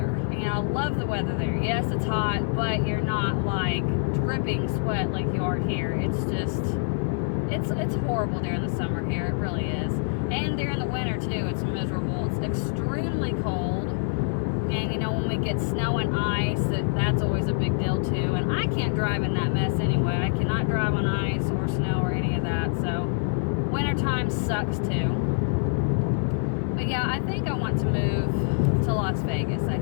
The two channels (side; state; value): right; silent; 61 dB below the other